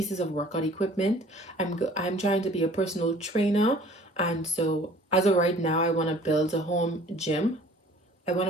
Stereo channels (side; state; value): both; normal; correlation 0.51